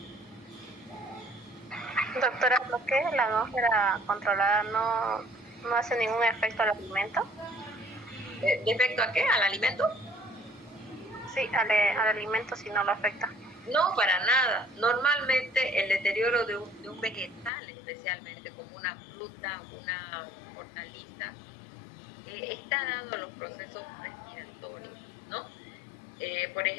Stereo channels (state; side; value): drops out; right; at 17.5 s